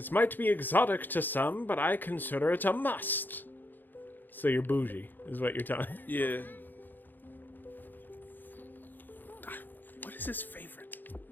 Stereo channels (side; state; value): right; late; 0.089 ms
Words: might be exotic to some, but I consider it a must. So you're bougie, is what you're telling me. Yeah. What is his favorite?